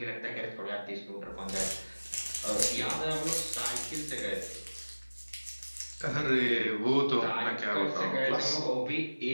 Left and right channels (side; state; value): both; inverted; correlation -1.00